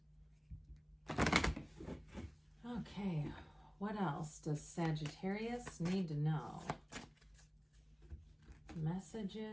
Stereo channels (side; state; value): both; identical; correlation 1.00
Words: Okay, what else does Sagittarius need to know?